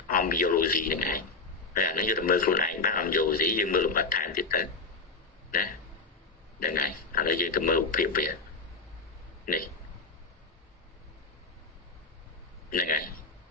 om biology này này nó như là mơខ្លួនឯង bác om biology nhưng mơ làm bát thản thì tới nè đây này là gì từ mơ phiền về này này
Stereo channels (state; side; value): quieter; right; 4.1 dB